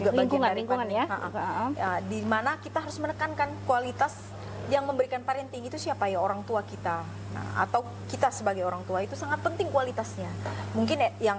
bagian dari lingkungan ya. Di mana kita harus menekankan kualitas yang memberikan parenting itu siapa ya, orang tua kita. Nah, atau kita sebagai orang tua itu sangat penting kualitasnya. Mungkin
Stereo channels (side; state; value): both; identical; correlation 1.00